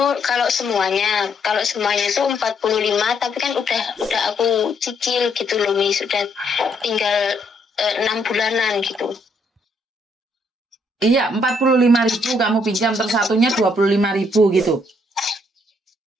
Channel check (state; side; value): normal; both; correlation 0.71